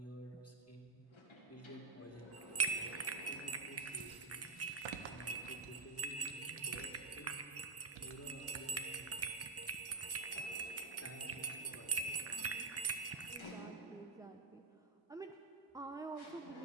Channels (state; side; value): quieter; left; 4.2 dB